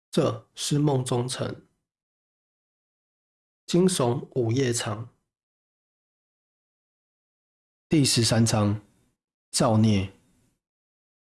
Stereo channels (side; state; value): both; identical; correlation 1.00